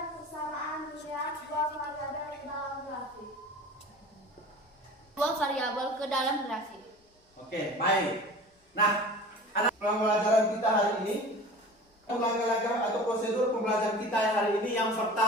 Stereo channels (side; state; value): both; normal; correlation 0.39